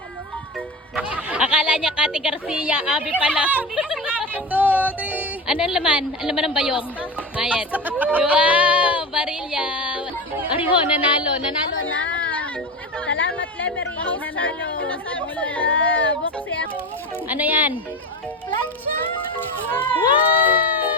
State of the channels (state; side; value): normal; both; correlation 0.24